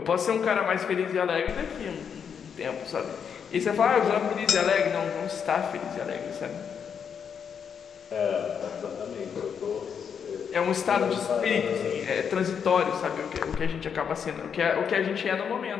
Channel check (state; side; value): quieter; right; 7.2 dB